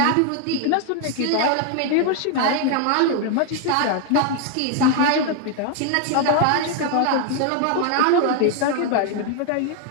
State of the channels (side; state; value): both; different; correlation 0.00